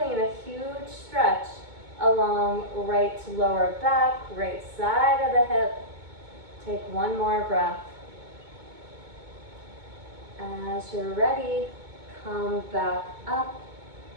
a huge stretch along right lower back, right side of the hip. Take one more breath. As you're ready, come back up,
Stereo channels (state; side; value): late; left; 2.2 ms